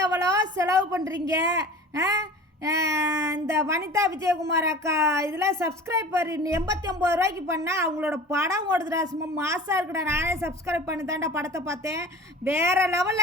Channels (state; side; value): normal; both; correlation 0.39